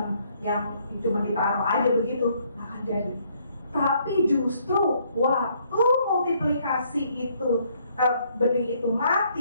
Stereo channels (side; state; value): both; inverted; correlation -0.67